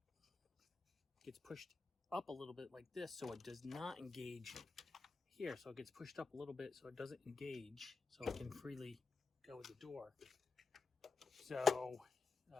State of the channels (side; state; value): right; quieter; 4.4 dB